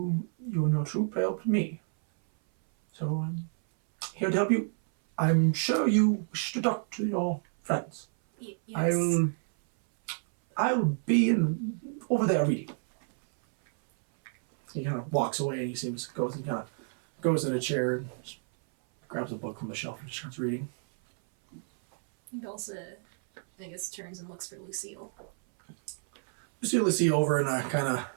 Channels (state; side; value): silent; left; 58 dB below the other